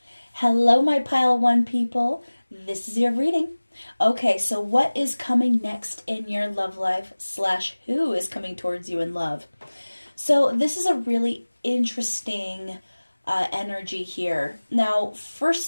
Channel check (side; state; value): both; inverted; correlation -1.00